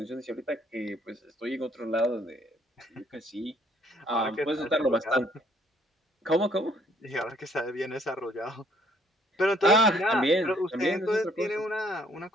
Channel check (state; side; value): normal; both; correlation 0.63